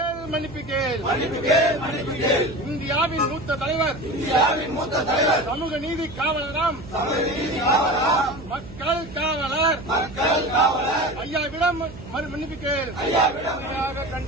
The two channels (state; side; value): noise; right; hum, 16 dB below the sound